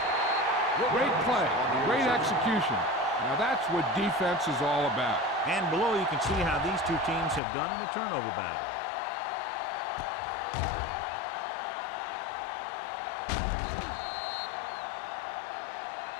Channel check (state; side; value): drops out; right; at 7.4 s